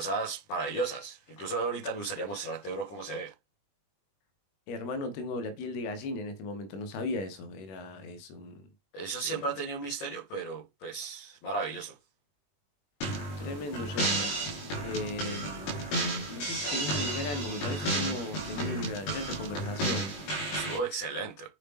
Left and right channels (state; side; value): late; right; 21 ms